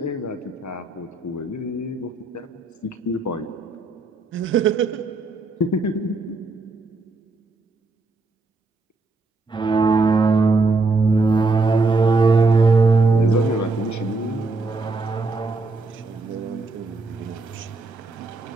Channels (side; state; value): left; quieter; 3.5 dB